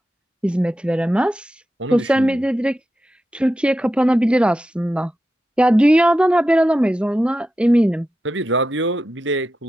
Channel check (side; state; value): both; normal; correlation 0.90